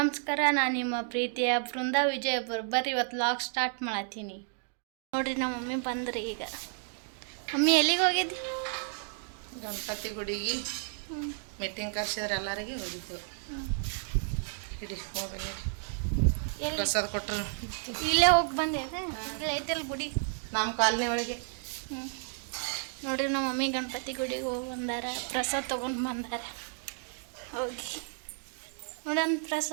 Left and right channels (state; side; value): silent; left; 57 dB below the other